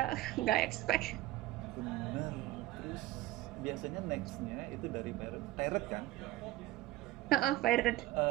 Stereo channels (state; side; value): quieter; left; 16.4 dB